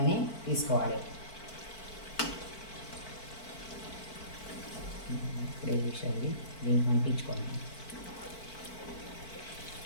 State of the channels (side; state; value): right; late; 4.5 ms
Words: తీసుకోవాలి. ఇప్పుడే విషయాలు దీనికి అంటించుకోండి.